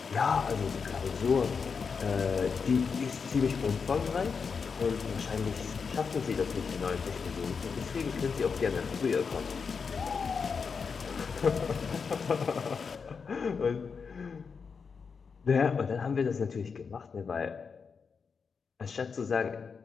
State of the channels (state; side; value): quieter; right; 5.6 dB